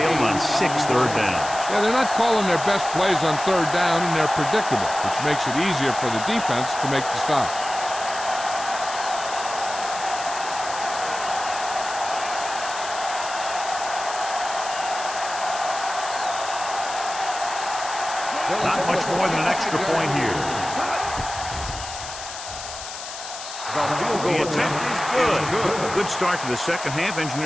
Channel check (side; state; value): left; noise; hiss, 10 dB below the sound